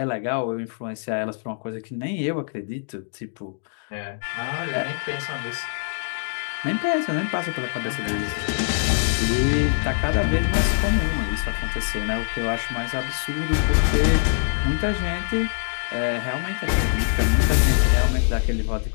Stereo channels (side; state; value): right; silent; digital silence